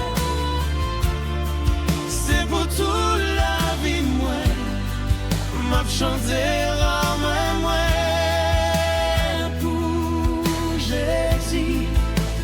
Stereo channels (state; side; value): identical; both; correlation 1.00